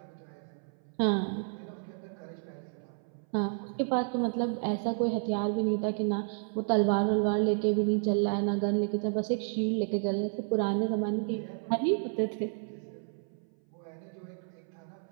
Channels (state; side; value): silent; left; 57 dB below the other